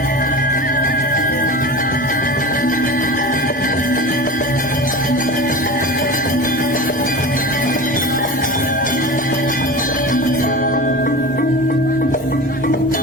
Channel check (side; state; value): both; normal; correlation 0.31